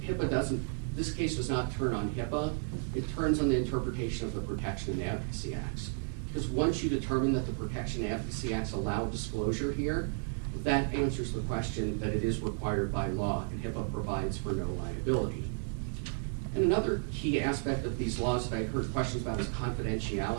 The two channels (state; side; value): silent; left; 55 dB below the other